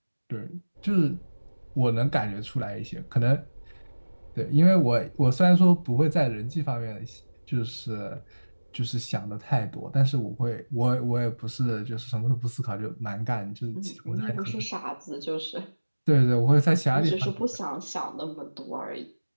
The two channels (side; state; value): both; inverted; correlation -1.00